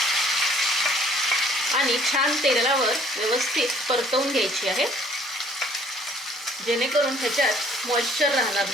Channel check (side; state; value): both; normal; correlation 0.58